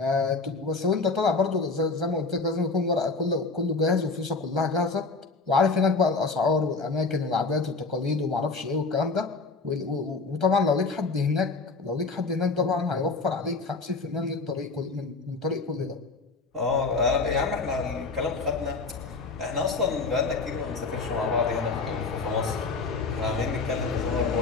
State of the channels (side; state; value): right; quieter; 4.0 dB